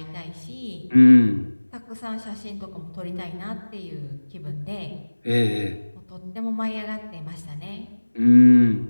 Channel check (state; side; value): inverted; both; correlation -1.00